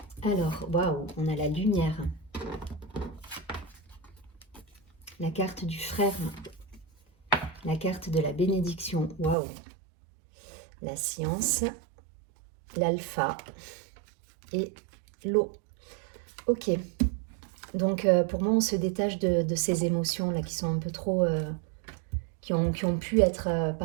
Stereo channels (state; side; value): drops out; left; at 9.3 s